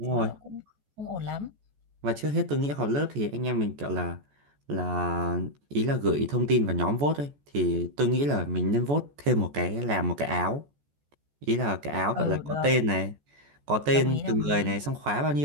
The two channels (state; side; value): late; left; 14 ms